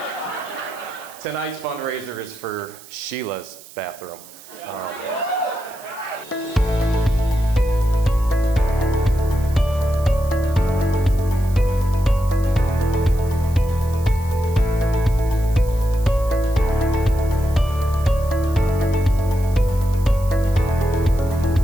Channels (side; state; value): right; noise; hiss, 20 dB below the sound